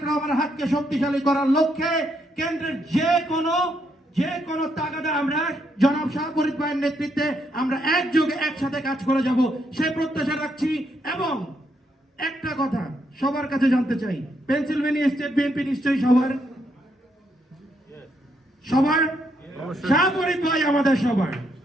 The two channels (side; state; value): both; normal; correlation 0.76